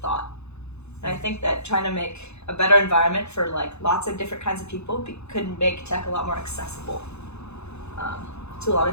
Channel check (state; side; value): late; right; 0.81 ms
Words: And I think that trying to make a better environment for like lots of different kinds of people could make tech a lot more accessible to a lot